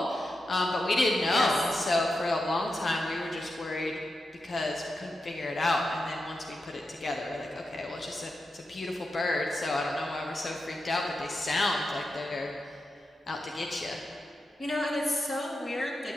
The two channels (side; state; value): both; normal; correlation 0.89